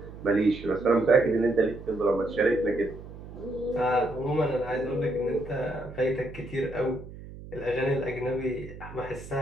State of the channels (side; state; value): right; noise; hum, 14 dB below the sound